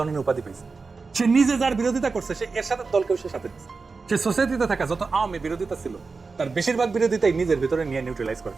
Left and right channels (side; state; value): left; quieter; 4.4 dB